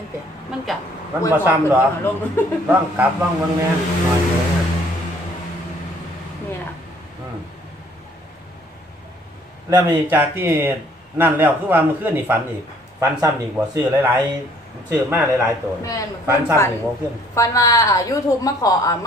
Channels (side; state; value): both; normal; correlation 0.60